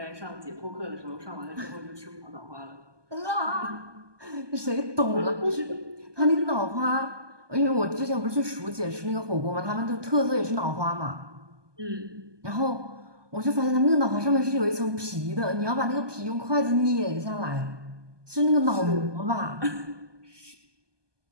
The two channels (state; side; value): late; left; 1.2 ms